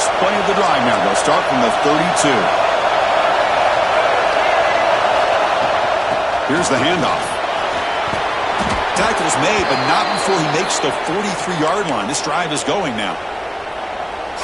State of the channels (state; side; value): identical; both; correlation 1.00